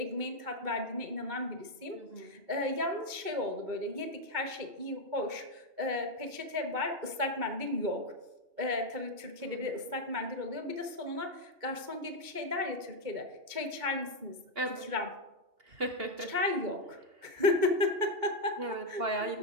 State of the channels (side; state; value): left; late; 2.2 ms